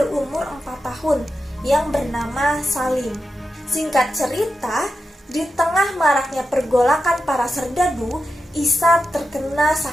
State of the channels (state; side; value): normal; both; correlation 0.90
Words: 4 tahun yang bernama Salim. Singkat cerita, di tengah maraknya pergolakan para serdadu, Isa terkena